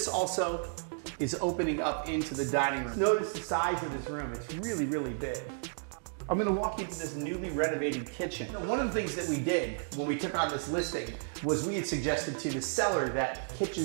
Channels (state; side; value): silent; left; digital silence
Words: also is opening up into the dining room. Notice the size of this room. It's really big. I'm going to walk you to this newly renovated kitchen. One of the things that we did when we took on this listing was we had suggested to the seller that